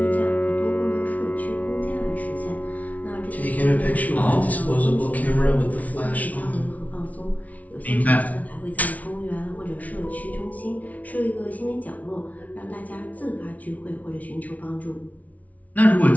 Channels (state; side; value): late; right; 0.071 ms